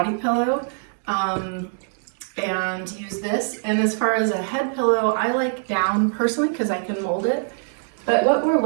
pillow and use this. And as far as a head pillow, I like down personally because I can mold it. But what we're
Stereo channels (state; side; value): silent; left; digital silence